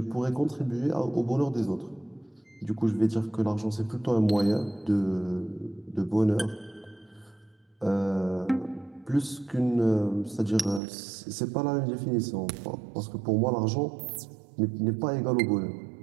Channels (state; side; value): drops out; left; at 10.8 s